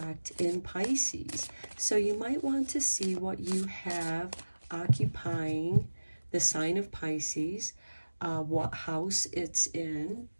in Pisces. So you might want to see what you have occupying the sign of Pisces, what house it's in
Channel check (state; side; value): inverted; both; correlation -1.00